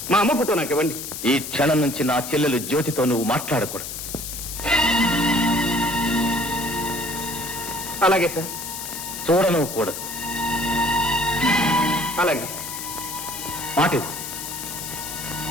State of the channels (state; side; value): noise; left; hiss, 7 dB below the sound